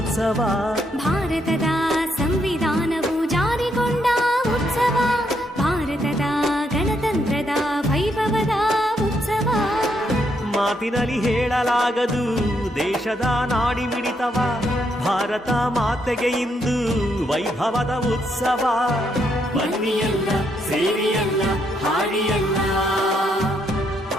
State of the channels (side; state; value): both; normal; correlation 0.76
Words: ಭಾರತದ ಸಂವಿಧಾನವು ಜಾರಿಗೊಂಡ ಉತ್ಸವ, ಭಾರತದ ಗಣತಂತ್ರದ ವೈಭವದ ಉತ್ಸವ. ಮಾತಿನಲ್ಲಿ ಹೇಳಲಾಗದು ದೇಶದ ನಾಡಿ ಮಿಡಿತವ, ಭಾರತ ಮಾತೆಗೆ ಇಂದು ವೈಭವದ ಉತ್ಸವ. ಬನ್ನಿಯಲ್ಲ ಸೇರಿಯಲ್ಲ ಹಾಡಿಯಲ್ಲ